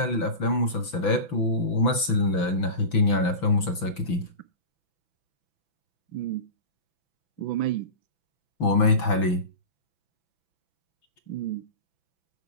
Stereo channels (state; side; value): late; right; 6.0 ms